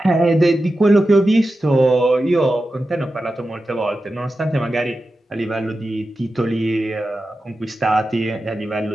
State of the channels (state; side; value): normal; both; correlation 0.92